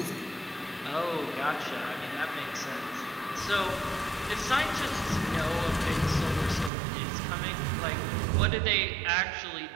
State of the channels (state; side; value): drops out; left; at 6.7 s